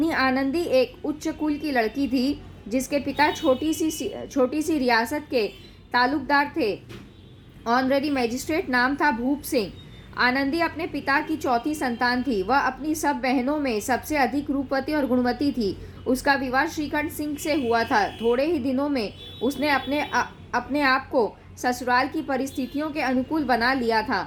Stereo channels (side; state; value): both; identical; correlation 1.00